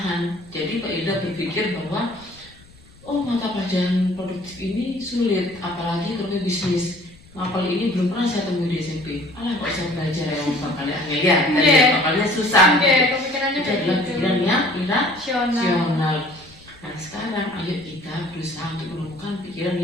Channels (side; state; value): left; noise; rumble, 26 dB below the sound